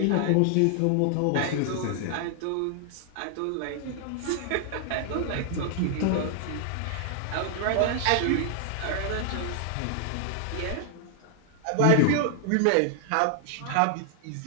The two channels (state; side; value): different; both; correlation 0.00